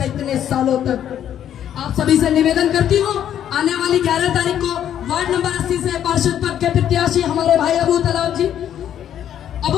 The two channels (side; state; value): right; quieter; 10.2 dB